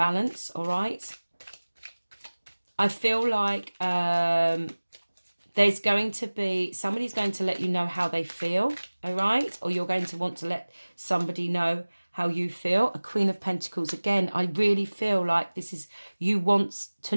all right? I feel like there's going to be, somebody's going to let you know how they feel, all right? Or you're going to want to let somebody know how you feel. A Queen of Pentacles. Again, I really feel like this is, you want to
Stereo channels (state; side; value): inverted; both; correlation -1.00